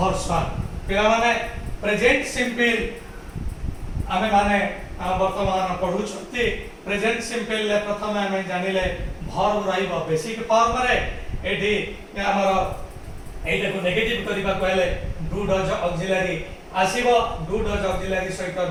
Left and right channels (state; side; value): identical; both; correlation 1.00